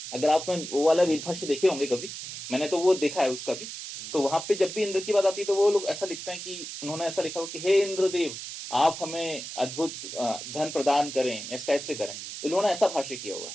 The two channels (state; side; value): noise; right; hiss, 9 dB below the sound